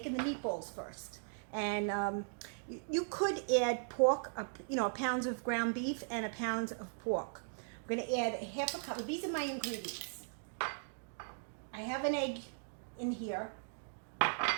the meatballs first. And you could add pork, a pound of ground beef and a pound of pork. I'm going to add a half a cup. These are my ingredients. I have an egg in here. I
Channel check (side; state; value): left; silent; digital silence